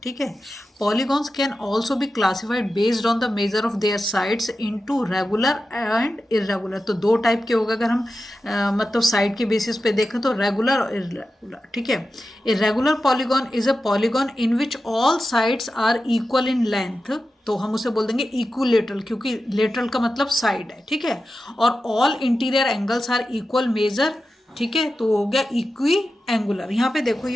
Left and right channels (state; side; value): normal; both; correlation 0.92